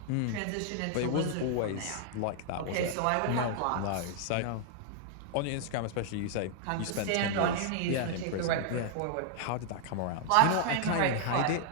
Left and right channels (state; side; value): different; both; correlation -0.01